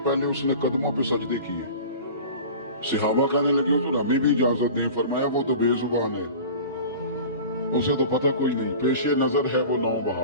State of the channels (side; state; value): both; inverted; correlation -0.38